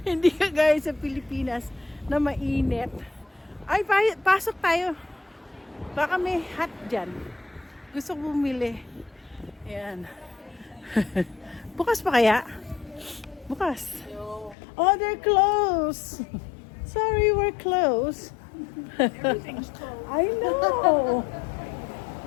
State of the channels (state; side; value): drops out; right; at 14.6 s